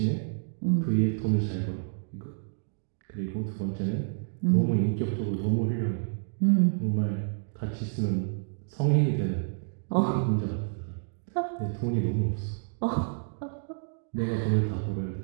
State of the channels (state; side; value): silent; left; digital silence